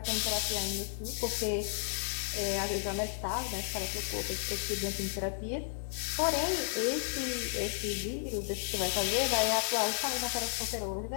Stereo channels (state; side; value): silent; right; digital silence